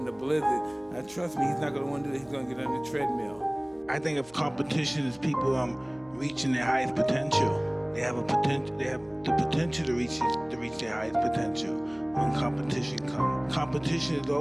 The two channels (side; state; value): right; noise; hum, 29 dB below the sound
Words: the blizzard, now trust me, he's not going to want to do that. He's going to get on the treadmill. I think of competition as people reaching their highest potential. They have the potential to reach their highest potential when competition comes. Competition is